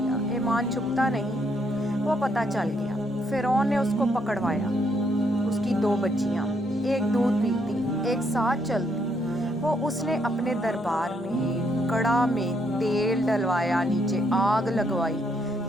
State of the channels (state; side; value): normal; both; correlation 0.73